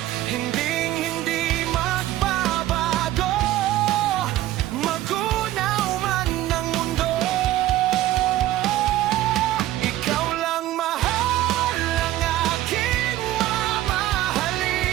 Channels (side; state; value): left; quieter; 14.6 dB